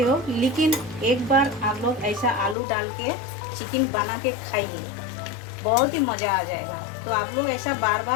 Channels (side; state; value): right; drops out; at 2.6 s